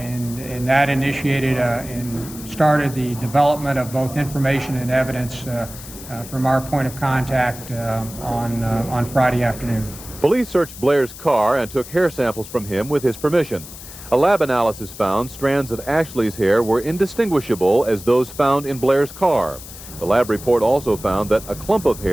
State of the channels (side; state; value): left; noise; hiss, 15 dB below the sound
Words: that initiated and started the development of both information and evidence from our point of contact on Friday afternoon. Police searched Blair's car and took hair samples from him with his permission. A lab analysis found strands of Ashley's hair were indistinguishable as those found in Blair's car. The lab report also found that a clump of